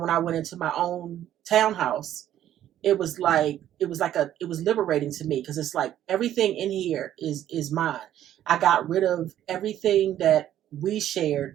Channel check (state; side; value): quieter; left; 11.7 dB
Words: I went into my own townhouse, it was liberating to me, because it's like everything in here is mine. I got rid of everything that we